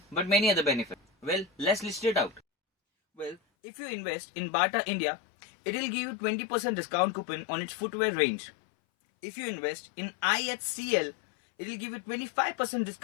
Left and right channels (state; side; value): drops out; right; at 3.4 s